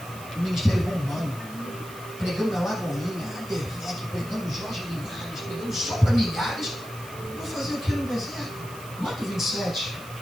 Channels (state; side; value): noise; right; hiss, 17 dB below the sound